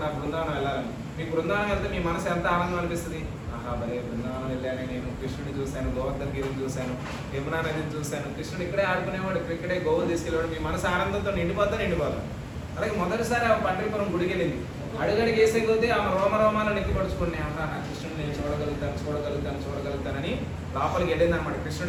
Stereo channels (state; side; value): identical; both; correlation 1.00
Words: బృందావనం వెళ్ళాలని. మీకు బృందావనం వెళ్తే మీ మనసు ఎంత ఆనందం అనిపిస్తుంది. ఆహా భలే బృందావనం వెళ్ళాను, నేను కృష్ణుడిని చూశాను, గోవర్ధన గిరిని చూశాను, యమునా నదిని చూశాను, కృష్ణుడు ఇక్కడే ఆడుకునేవాడు, ఇక్కడే గోవులు తీసుకెళ్ళేవాడు. మీ మనసు ఆనందంతో నిండిపోతా. అలాగే మొదటిసారి ఆమె పండరిపురం గుడికి వెళ్ళింది. అడుగడికి వేసే కొద్దీ ఆమె రోమరోమాలు నెక్కిపడుచుకుని, నా కృష్ణుడు నేను చూడగలుగుతానని లోపలికి వెళ్ళింది అనమాట.